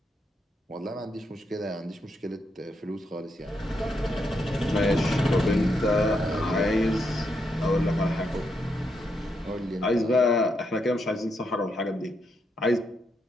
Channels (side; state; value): both; normal; correlation 0.80